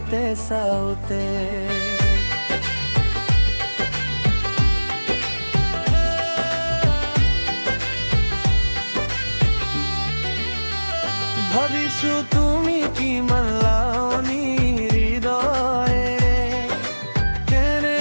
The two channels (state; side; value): inverted; both; correlation -1.00